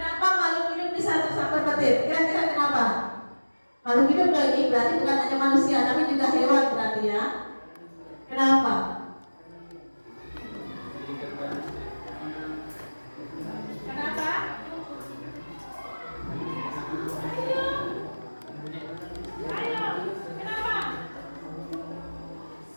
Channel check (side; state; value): both; inverted; correlation -1.00